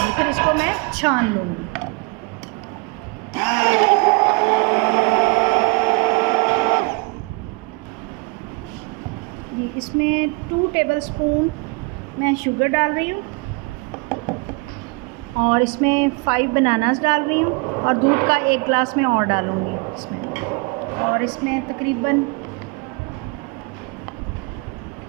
फिर इसको मैं छान लूँगी। इसमें 2 टेबलस्पून मैं शुगर डाल रही हूँ और इसमें 5 बनानास डाल रही हूँ और दूध का 1 गिलास में और डालूँगी इसमें। और इसमें तकरीबन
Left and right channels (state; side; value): quieter; left; 28.9 dB